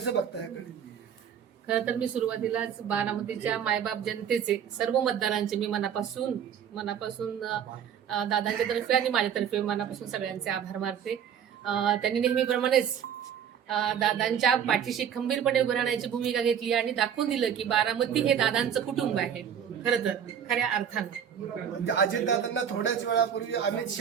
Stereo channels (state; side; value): quieter; left; 8.4 dB